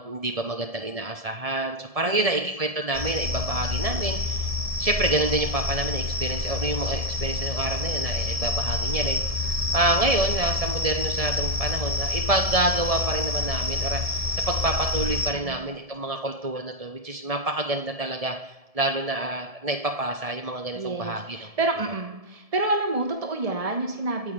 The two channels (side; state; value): left; late; 1.7 ms